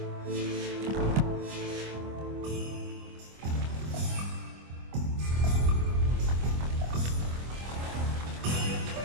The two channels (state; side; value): late; left; 25 ms